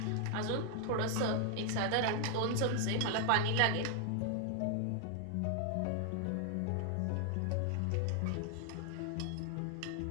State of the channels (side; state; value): both; different; correlation 0.00